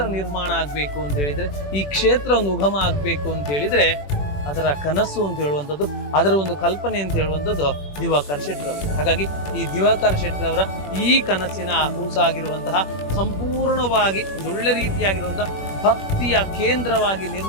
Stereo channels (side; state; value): right; late; 21 ms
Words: ನಿರ್ಮಾಣ ಆಗಬೇಕು ಅಂತ ಹೇಳಿದ್ರೆ, ಈ ಕ್ಷೇತ್ರ ಒಂದು ಉಗಮ ಆಗಬೇಕು ಅಂತ ಹೇಳಿದ್ರೆ ಅದರ ಕನಸು ಅಂತ ಹೇಳುವಂಥದ್ದು, ಅದರ ಒಂದು ಕಲ್ಪನೆ ಅಂತ ಹೇಳುವಂಥದ್ದು ದಿವಾಕರ್ ಶೆಟ್ಟರವರು. ಹಾಗಾಗಿ ಈ ದಿವಾಕರ್ ಶೆಟ್ಟರವರ ಈ ಕನಸಿನ ಕೂಸಾಗಿರುವಂತಹ ಸಂಪೂರ್ಣವಾಗಿ ಒಳ್ಳೆ ರೀತಿಯಾಗಿರುವಂತಹ ಭಕ್ತಿಯ ಕೇಂದ್ರವಾಗಿ